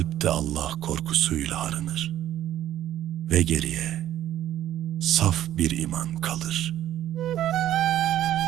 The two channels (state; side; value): quieter; left; 12.4 dB